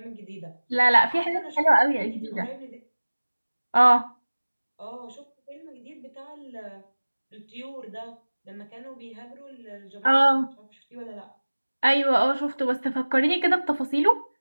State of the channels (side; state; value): both; inverted; correlation -1.00